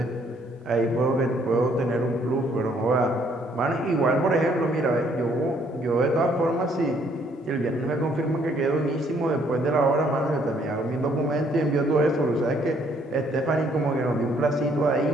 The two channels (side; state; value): both; normal; correlation 0.66